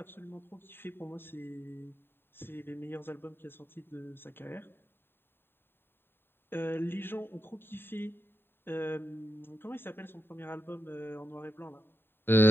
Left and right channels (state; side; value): late; right; 0.11 ms